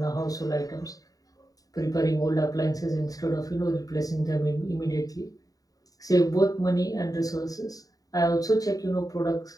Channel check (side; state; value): right; late; 0.18 ms